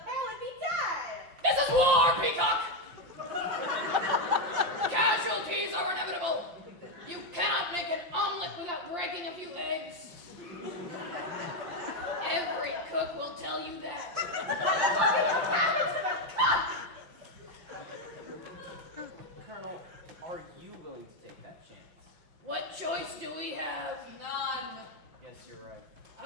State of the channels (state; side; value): late; left; 5.7 ms